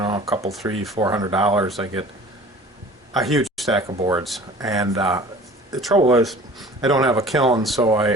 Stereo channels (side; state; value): both; normal; correlation 0.45